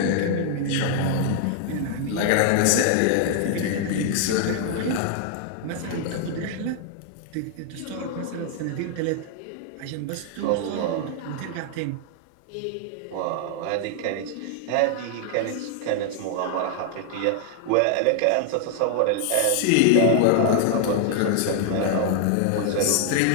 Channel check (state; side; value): different; both; correlation 0.00